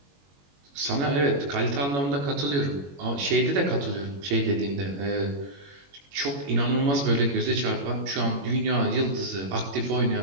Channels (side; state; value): left; late; 21 ms